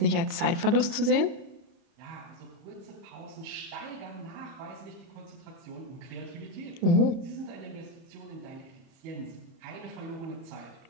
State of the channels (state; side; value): late; left; 30 ms